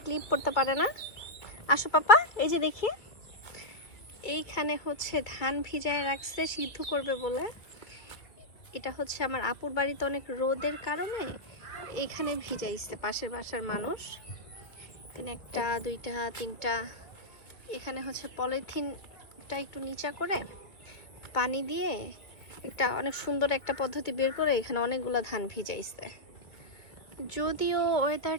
ক্লিপ পরতে পারে না। আসো পাপা, এই যে দেখি এইখানে ধান ভিজায় রাখছে সিদ্ধ করবে বলে। এটা আমার আপুর বাড়িতে অনেক রোদের কারণে এইখানে ভিজাইছে পাশের বাসার মানুষ। এখানে একটা, দুইটা, তিনটা। এখানে পলিথিনটা একটু নিচা করে পানি দিয়ে এটা অনেক সুন্দর একটা পদ্ধতি বের করে এখানে অনেকগুলো ধান ভিজাইছে। যদিও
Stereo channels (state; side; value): late; right; 2.3 ms